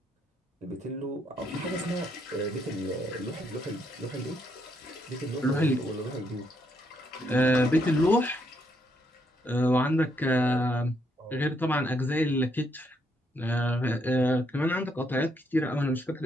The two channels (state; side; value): normal; both; correlation 0.74